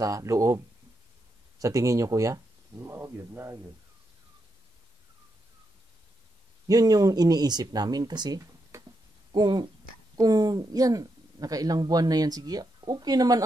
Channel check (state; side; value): normal; both; correlation 0.83